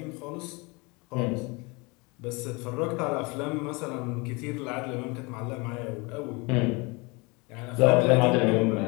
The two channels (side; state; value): right; quieter; 27.5 dB